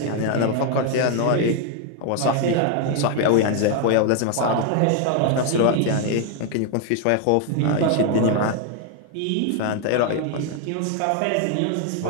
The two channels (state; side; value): different; both; correlation 0.01